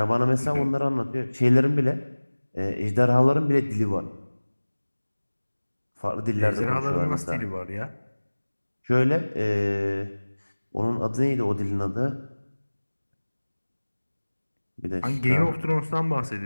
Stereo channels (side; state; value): both; inverted; correlation -1.00